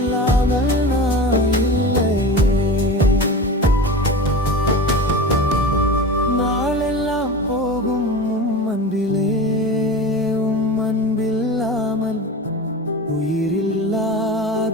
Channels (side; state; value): both; normal; correlation 0.31